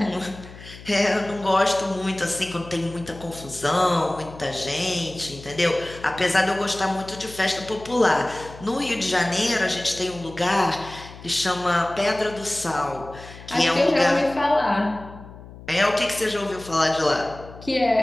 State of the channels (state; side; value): noise; left; hum, 17 dB below the sound